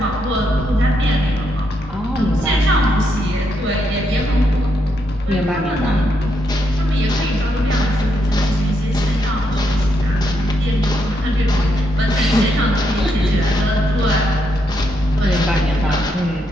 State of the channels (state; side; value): normal; both; correlation 0.79